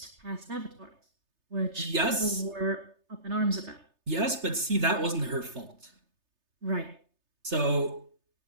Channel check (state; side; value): late; left; 3.3 ms